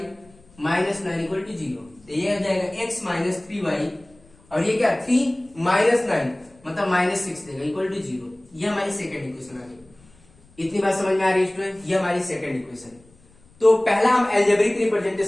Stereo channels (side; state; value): left; noise; rumble, 29 dB below the sound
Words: minus 9 equal to 0, तो ये हो जाएगा x माइनस 3y और ये क्या 3 माइनस 9 मतलब माइनस 6 देगा इक्वल टू 0। ये हमारी सेकंड इक्वेशन आ गई। इतनी बात समझ में आ रही है स्टूडेंट, ये हमारी सेकंड इक्वेशन। तो पहला हम एल्जेब्रिक